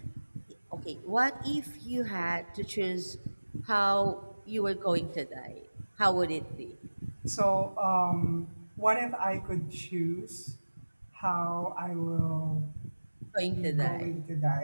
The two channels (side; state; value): both; inverted; correlation -1.00